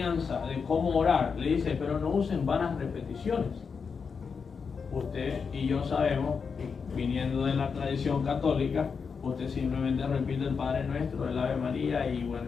de cómo orar, le dice, pero no usen vanas repeticiones. Usted y yo sabemos, viniendo de la tradición católica, usted simplemente repite el Padre Nuestro, el Ave María y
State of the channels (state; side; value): quieter; right; 5.7 dB